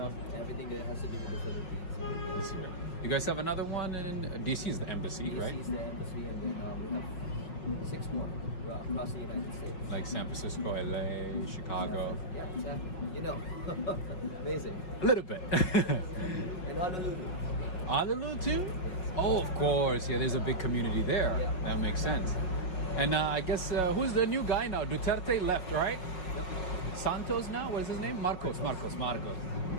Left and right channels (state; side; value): late; right; 5.5 ms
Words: Everything that has to do with the Philippines. This year. You guys have another one in DC is the embassy, right? DC is the embassy, and then we have 6 more across the United States. Like San Francisco, LA, Chicago. Yeah, exactly. Amazing. A little bit. And Honolulu. Honolulu too? Oh, of course. Yeah, there's a big community there. Yeah. That makes sense. And I guess who's the new guy now? Duterte left, right? Yep. Santos now? What is his name? Marcos.